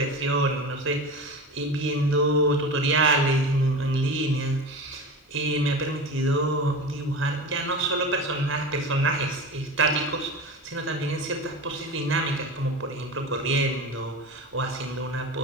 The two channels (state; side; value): normal; both; correlation 0.29